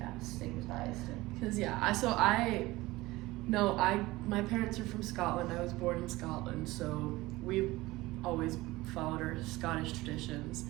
stigmatized. Because my parents are from Scotland. I was born in Scotland, so we've always followed our Scottish traditions.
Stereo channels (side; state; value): left; quieter; 19.5 dB